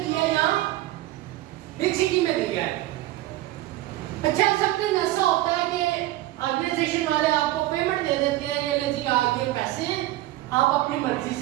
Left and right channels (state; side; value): quieter; left; 16.0 dB